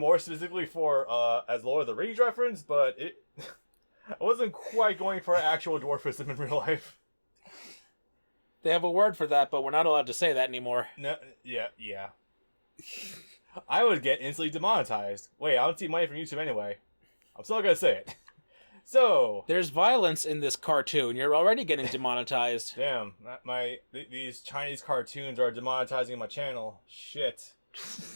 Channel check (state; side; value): inverted; both; correlation -1.00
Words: specifically for as Lord of the Rings reference, but I wasn't quite going for actual dwarfism in real life. They have a word for that, but we're not allowed to say that anymore. No, yeah. I would get instantly demonetized. Wait, I don't see money from YouTube anyway. I'm still gonna say it. So... There's violence in this cartoon. You're already getting demonetized. Damn. These Chinese cartoons are demonetizing my channel. Shit.